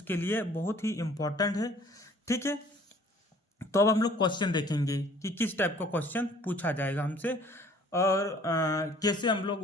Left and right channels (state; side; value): normal; both; correlation 0.54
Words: लिए बहुत ही इम्पोर्टेंट है। ठीक है, तो अब हम लोग क्वेश्चन देखेंगे कि किस टाइप का क्वेश्चन पूछा जाएगा हमसे और कैसे हम लोग